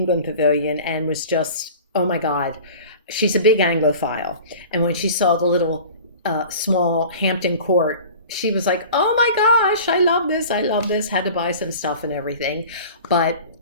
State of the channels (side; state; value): both; inverted; correlation -0.40